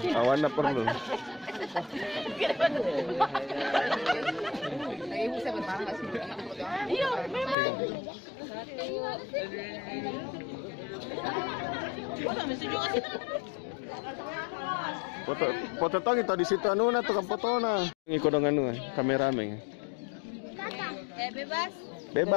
awan apa perlu? Iya, memang. Foto tong itu di situ anu na tukang foto na. Ngikut dengan anu kameramen. Bebas.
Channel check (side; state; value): right; drops out; at 7.6 s